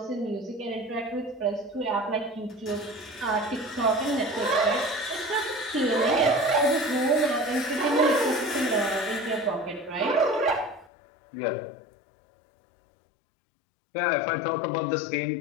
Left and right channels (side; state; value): right; drops out; at 10.9 s